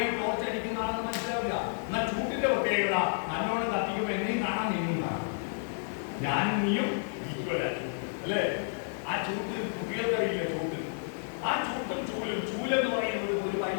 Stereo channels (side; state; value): right; silent; digital silence